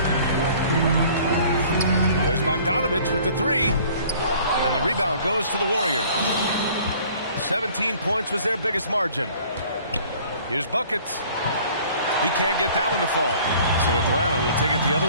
There's Bogdanovic with the 3. And the rebound goes to the Warriors. 17 points was their biggest margin. Here's Buckets. He can't get that one to fall. So Atlanta will take it the other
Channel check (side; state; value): both; inverted; correlation -0.52